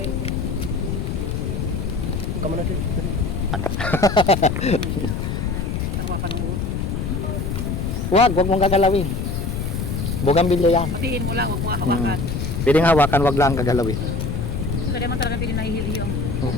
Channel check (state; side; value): noise; left; rumble, 2 dB below the sound